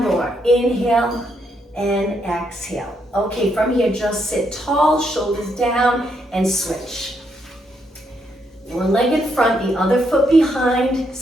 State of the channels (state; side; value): normal; both; correlation 0.77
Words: more, inhale and exhale. Okay, from here, just sit tall, shoulders down, and switch. One leg in front, the other foot behind.